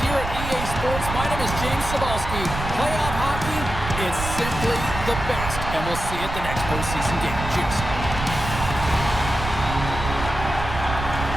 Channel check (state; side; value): noise; right; rumble, 6 dB below the sound